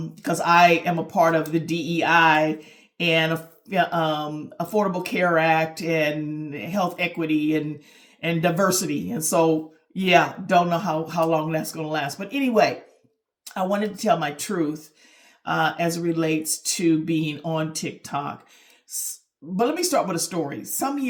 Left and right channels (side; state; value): both; identical; correlation 1.00